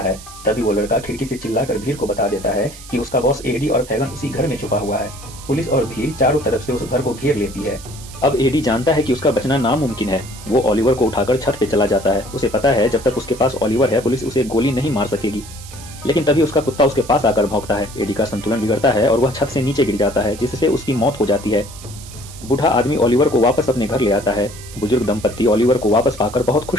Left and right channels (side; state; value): right; noise; hiss, 17 dB below the sound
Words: तभी वो लड़का खिड़की से चिल्लाकर भीड़ को बता देता है कि उसका बॉस एडी और फैगन उसी घर में छुपा हुआ है। पुलिस और भीड़ चारों तरफ से उस घर को घेर लेती है। अब एडी जानता है कि उसका बचना नामुमकिन है। वो ऑलिवर को उठाकर छत पे चला जाता है। उसे पता है जब तक उसके पास ऑलिवर है पुलिस उसे गोली नहीं मार सकेगी। लेकिन तभी उसका कुत्ता उसके पास आकर भौंकता है। एडी का संतुलन बिगड़ता है और वह छत से नीचे गिर जाता है, जिससे उसकी मौत हो जाती है। बूढ़ा आदमी ऑलिवर को वापस अपने घर ले आता है। बुजुर्ग दंपत्ति ऑलिवर को वापस पाकर बहुत